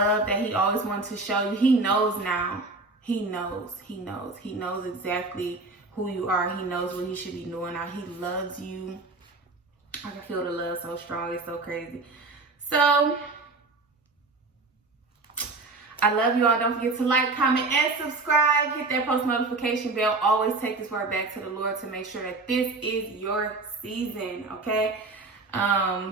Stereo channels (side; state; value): left; quieter; 3.5 dB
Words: that he always wanted to show you. He knows now. He knows. He knows. He knows exactly who you are. He knows what he should be doing now. He loves you. I can feel the love so strong. It's so crazy. So I love you all. Don't forget to like, comment, and subscribe. Hit that post notification bell. Always take this word back to the Lord to make sure that this is your season, okay?